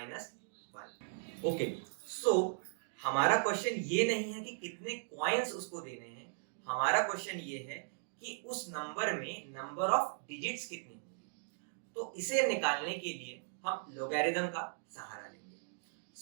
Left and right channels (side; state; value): left; silent; digital silence